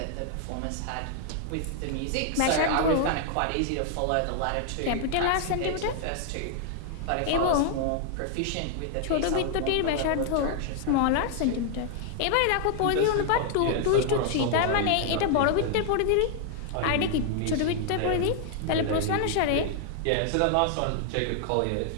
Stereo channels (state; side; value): different; both; correlation 0.00